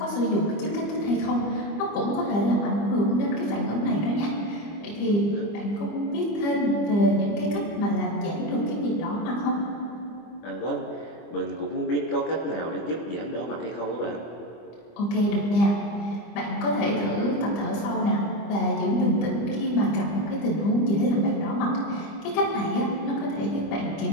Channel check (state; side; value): late; right; 25 ms